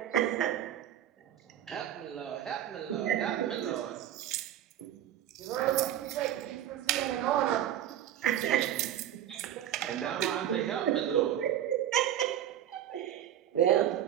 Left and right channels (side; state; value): left; quieter; 11.2 dB